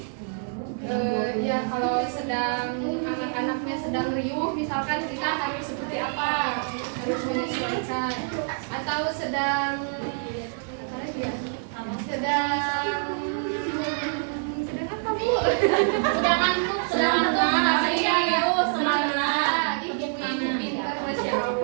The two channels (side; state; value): left; silent; 61 dB below the other